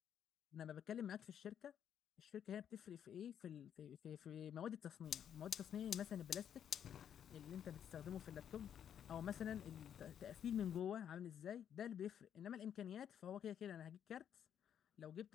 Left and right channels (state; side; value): quieter; right; 9.1 dB